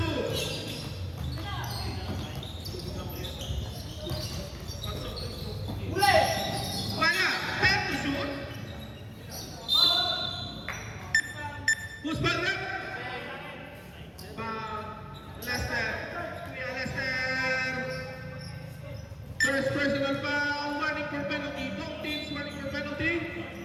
Wala. Pen to shoot. Who's ball rep? Lester. Kuya Lester. First personal foul. Warning for penalty. Both teams warning for penalty.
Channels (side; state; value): both; identical; correlation 1.00